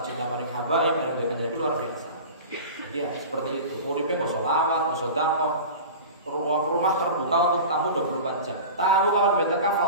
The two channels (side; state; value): both; inverted; correlation -0.34